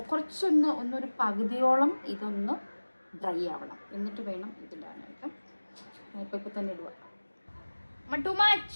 ഒന്നൊരു പകുതിയോളം ഇതൊന്ന് ഡ്രൈ ആവണം. എന്നിട്ട് വേണം ഇതിടാനായിട്ട്. ഇപ്പൊ തന്നെ ഇടുക.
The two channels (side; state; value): both; inverted; correlation -1.00